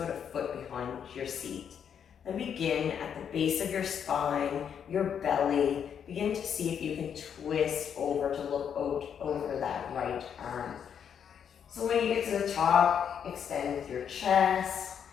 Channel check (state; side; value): quieter; right; 8.0 dB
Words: a foot behind your seat. Then begin at the base of your spine, your belly. Begin to see if you can twist over to look out over that right arm. So when you get to the top, extend with your chest.